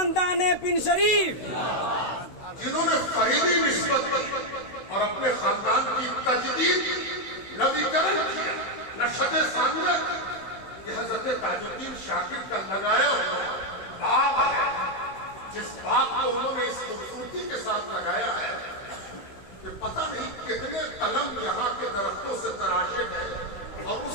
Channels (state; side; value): late; right; 16 ms